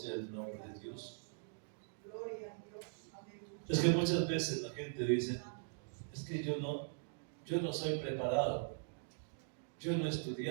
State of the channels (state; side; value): silent; left; digital silence